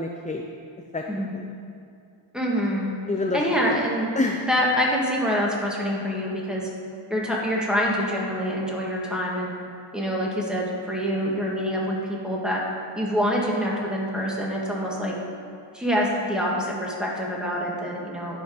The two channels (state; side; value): normal; both; correlation 0.36